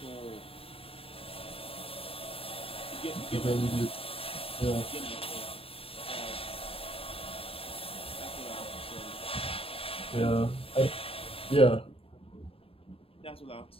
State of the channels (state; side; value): late; right; 0.27 ms